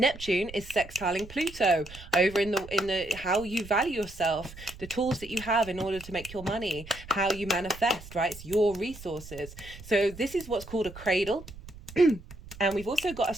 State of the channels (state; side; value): noise; right; rumble, 16 dB below the sound